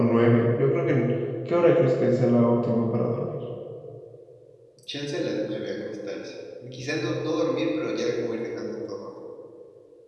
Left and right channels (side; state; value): both; identical; correlation 1.00